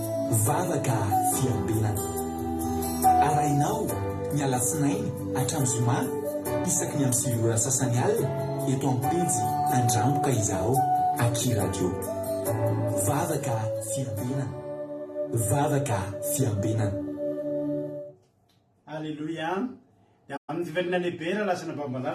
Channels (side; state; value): both; identical; correlation 1.00